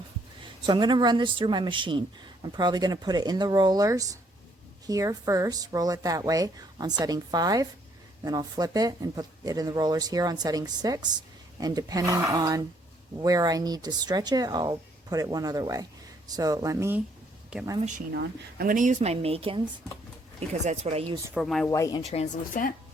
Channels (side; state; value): both; normal; correlation 0.67